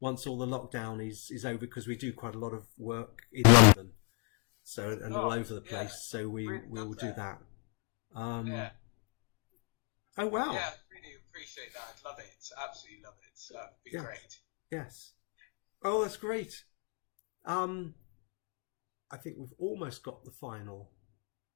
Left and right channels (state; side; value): quieter; right; 35.2 dB